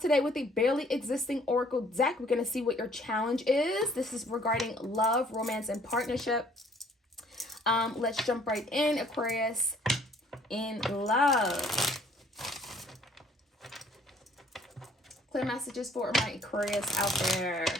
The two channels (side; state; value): both; normal; correlation 0.60